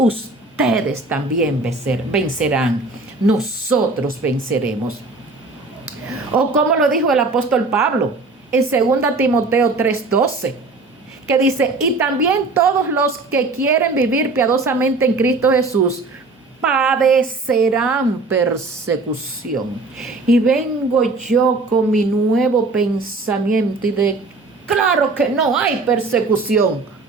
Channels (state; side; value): quieter; left; 3.5 dB